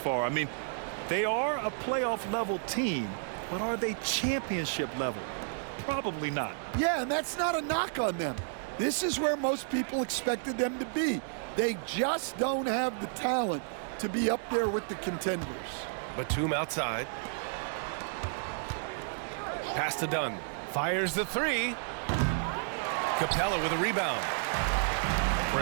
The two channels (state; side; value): silent; left; digital silence